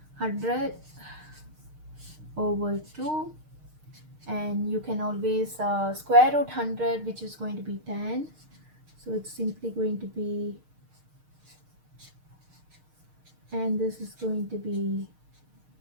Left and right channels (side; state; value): left; late; 6.5 ms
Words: 100 over 2, and you can always square root 100, which is going to be 10, so it's simply going to be, and this is going to be,